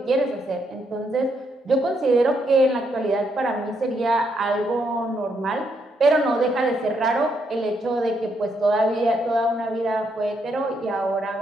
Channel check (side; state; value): both; normal; correlation 0.76